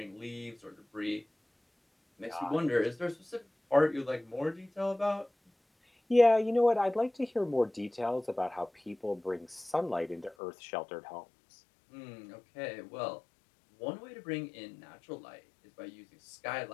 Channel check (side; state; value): right; drops out; at 10.4 s